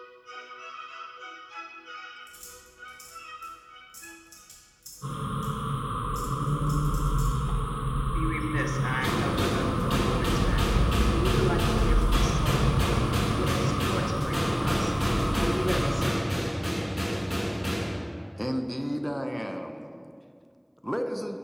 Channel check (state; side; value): identical; both; correlation 1.00